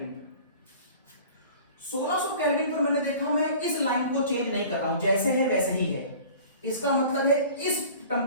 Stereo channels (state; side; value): inverted; both; correlation -0.44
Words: 1600 केल्विन पर मैंने देखा मैं इस लाइन को चेंज नहीं कर रहा हूं, जैसे है वैसे ही है। इसका मतलब है इस